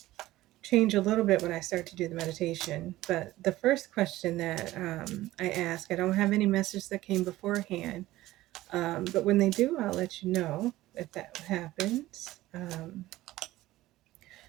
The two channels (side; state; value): left; quieter; 16.5 dB